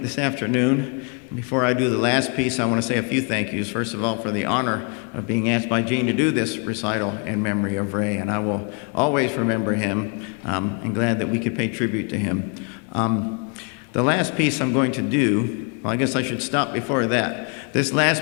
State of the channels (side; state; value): right; quieter; 37.2 dB